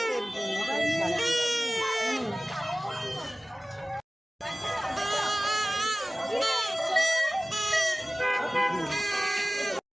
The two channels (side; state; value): both; normal; correlation 0.97